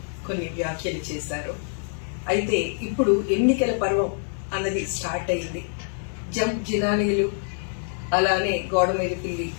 కొన్ని వ్యాఖ్యలు చేశారు. అయితే ఇప్పుడు ఎన్నికల పర్వం అన్నది స్టార్ట్ అయింది. జంప్ జినానీలు అలానే గోడ మీద పిల్లి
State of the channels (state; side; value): silent; right; digital silence